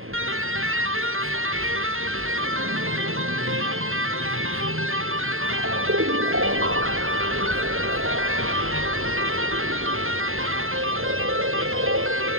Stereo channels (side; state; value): left; late; 0.61 ms